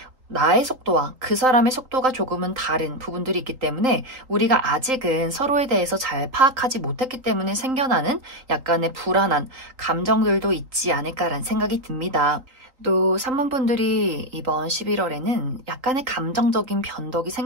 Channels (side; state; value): left; late; 3.8 ms